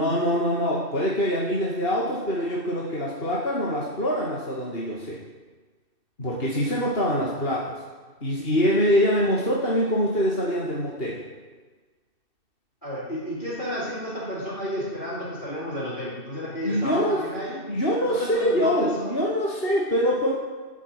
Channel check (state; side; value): late; right; 2.6 ms